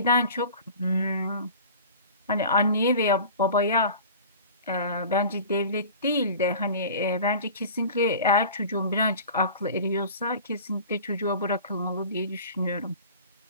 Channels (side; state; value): both; inverted; correlation -0.40